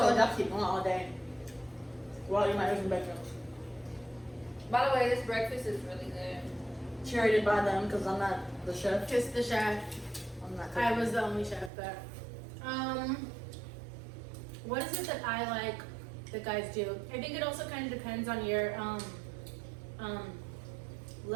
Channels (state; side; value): drops out; left; at 11.7 s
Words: you I'll keep going all day. Well, you might lose some bedrooms. By the way, this breakfast is really good. curated by them because I'm not the chef. Just the chef. I'm not. I was the only chef, but what is it that I like that guys do? I think it also kind of depends on your